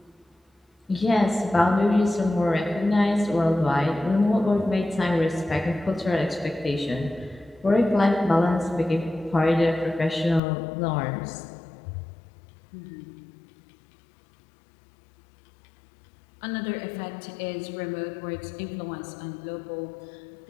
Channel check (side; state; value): right; drops out; at 10.4 s